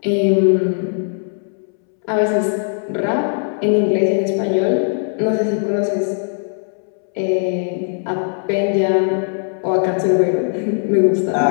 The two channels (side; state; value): right; silent; 67 dB below the other